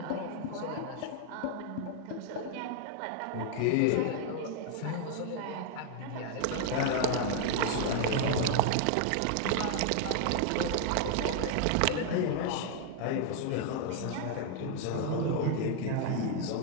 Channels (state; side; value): different; both; correlation 0.00